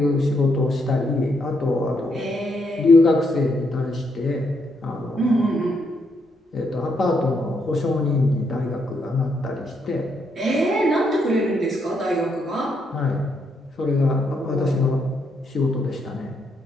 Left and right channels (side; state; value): both; normal; correlation 0.77